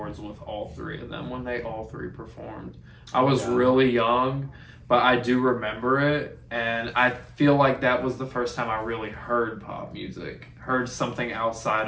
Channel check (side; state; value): both; identical; correlation 1.00